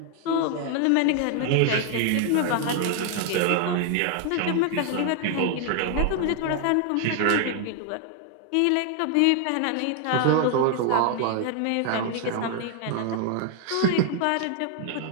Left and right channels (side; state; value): both; different; correlation 0.00